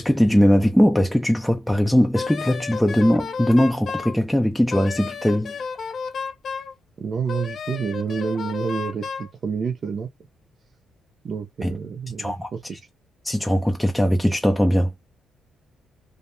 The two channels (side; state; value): both; normal; correlation 0.96